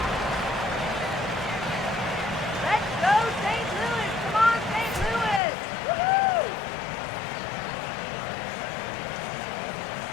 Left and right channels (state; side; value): drops out; right; at 5.4 s